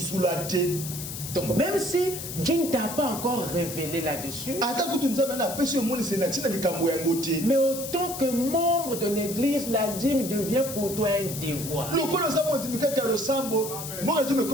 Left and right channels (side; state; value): left; noise; hiss, 8 dB below the sound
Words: Donc même si Dieu ne t'a pas encore révélé là-dessus, mais autant que membre de l'église, la dîme devient pour toi un devoir. Pas